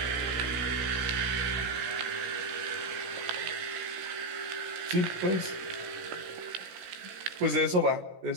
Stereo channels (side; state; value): left; late; 17 ms